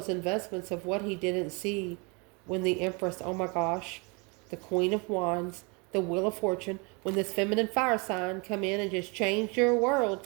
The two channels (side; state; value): left; quieter; 30.8 dB